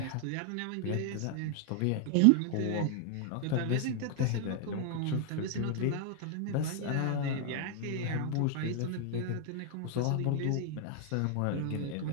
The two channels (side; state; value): both; different; correlation 0.00